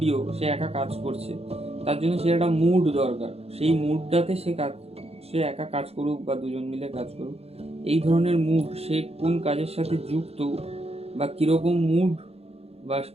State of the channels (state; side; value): late; left; 0.29 ms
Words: সে একা কাজ করছে, তার জন্য সে একটা মুড দরকার, সেই মুডটাতে সে একা কাজ করুক বা দুজন মিলে কাজ করুক, এই ধরনের মুড, সে কোন কাজের সাথে যুক্ত বা কীরকম মুড বা